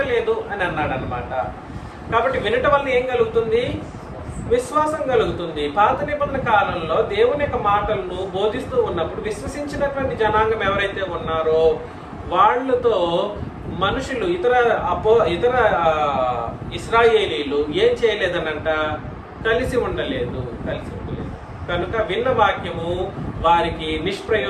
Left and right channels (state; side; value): identical; both; correlation 1.00